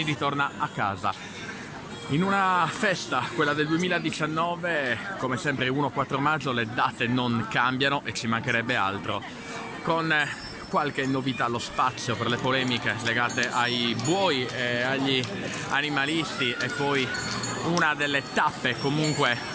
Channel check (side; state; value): both; identical; correlation 1.00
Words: ritorna a casa in una festa, quella del 2019. Come sempre 1-4 maggio le date non cambiano e ci mancherebbe altro, con qualche novità allo spazio per le polemiche legate ai buoi e agli animalisti, e poi una delle tappe comunque